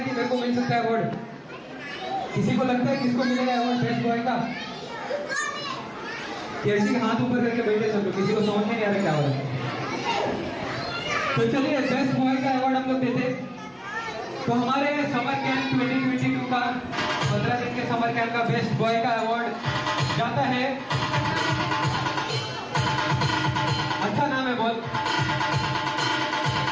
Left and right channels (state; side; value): identical; both; correlation 1.00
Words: कि मेरे को मिल सकता है अवार्ड? किसी को लगता है किसको मिलेगा अवार्ड बेस्ट बॉय का? किसी के हाथ ऊपर करके बैठे सब लोग, किसी को समझ में नहीं आ रहा क्या हो रहा है। तो चलिए बेस्ट बॉय का अवार्ड हम लोग देते। तो हमारे समर कैंप 2022 का 15 दिन के समर कैंप का बेस्ट बॉय का अवार्ड जाता है, अच्छा नाम है बहुत।